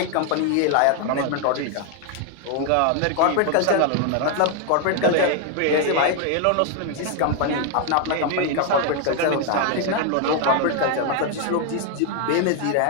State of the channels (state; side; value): different; both; correlation 0.01